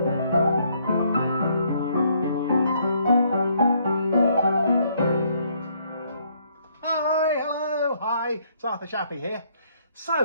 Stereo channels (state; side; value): inverted; both; correlation -0.68